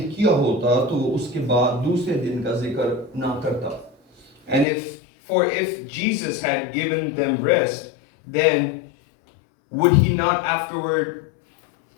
किया होता तो वो उसके बाद दूसरे दिन का जिक्र ना करता. And if Jesus had given them rest, then would he not afterward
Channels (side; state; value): right; drops out; at 4.7 s